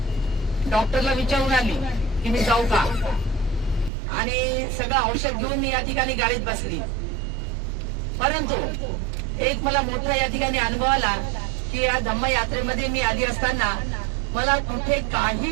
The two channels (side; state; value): left; drops out; at 3.9 s